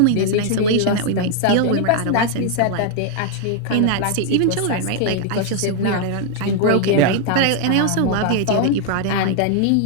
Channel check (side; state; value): both; different; correlation 0.00